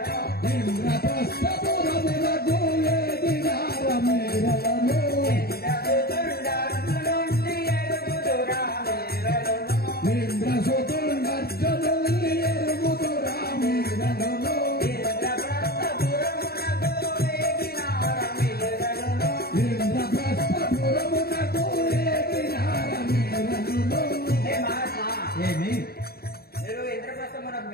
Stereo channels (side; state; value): right; late; 0.45 ms